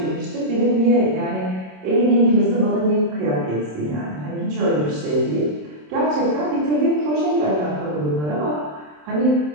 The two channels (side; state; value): left; late; 27 ms